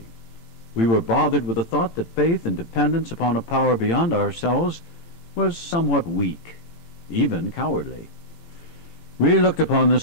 We were bothered with the thought that faith and dependence upon a power beyond ourselves was somewhat weak, even cowardly. We looked upon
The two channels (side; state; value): right; late; 18 ms